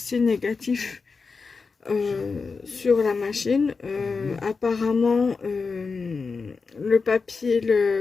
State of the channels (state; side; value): quieter; right; 4.7 dB